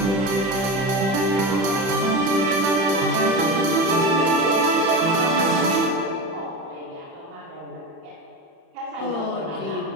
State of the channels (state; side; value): late; left; 31 ms